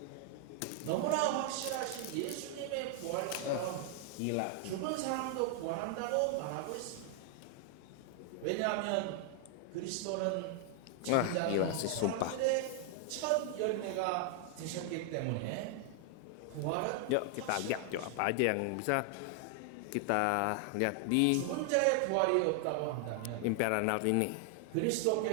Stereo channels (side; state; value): both; different; correlation 0.00